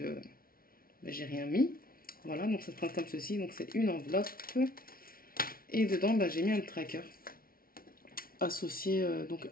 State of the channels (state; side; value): late; right; 0.43 ms